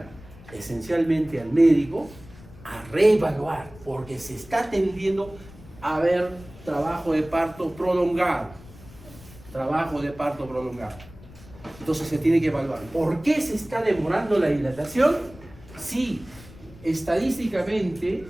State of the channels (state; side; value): noise; left; rumble, 20 dB below the sound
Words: esencialmente al médico, a reevaluar, porque se está tendiendo a ver trabajo de parto prolongado. Entonces se tiene que evaluar. ¿Por qué se está demorando la dilatación? Sí, estadísticamente,